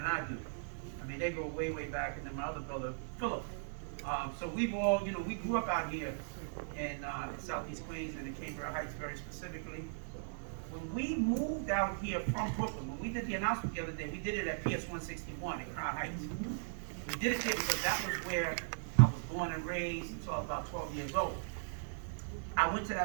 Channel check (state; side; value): silent; left; digital silence